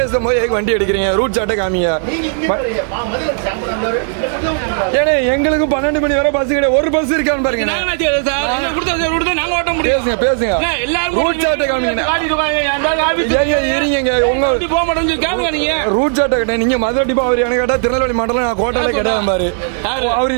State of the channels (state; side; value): silent; left; digital silence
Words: எதுக்கு வண்டி எடுக்கிறீங்க? ரூட் சாட்டை காமிங்க. ஏன்னா எங்களுக்கு 12 மணி வரை பஸ் கிடையாது. ஒரு பஸ் இருக்கான்னு பாருங்க. பேசுங்க. ரூட் சாட்டை காமிங்க. இருங்க, ரூட் சாட்டை கேட்டேன். நீங்க மதுரை டிப்பா அவர் எனக்கு கேட்டா திருநெல்வேலி மாடல நான் கோட்டையில கிடையாது பாரு. அவரு